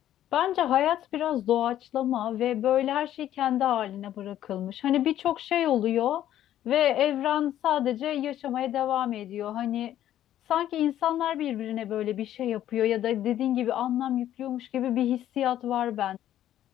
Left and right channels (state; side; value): quieter; right; 12.0 dB